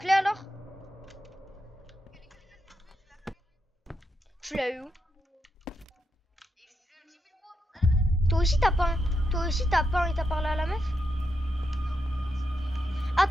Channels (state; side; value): normal; both; correlation 0.84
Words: alors? Tu l'as eu où? Toi aussi t'as peint. Toi aussi t'as peint et t'as parlé à la meuf?